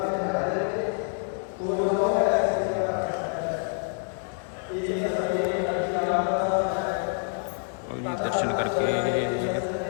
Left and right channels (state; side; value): silent; right; 60 dB below the other